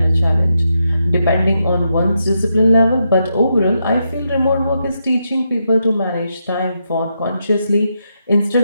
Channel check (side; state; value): both; inverted; correlation -0.83